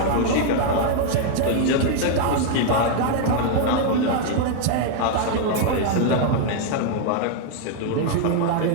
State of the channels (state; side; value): different; both; correlation 0.00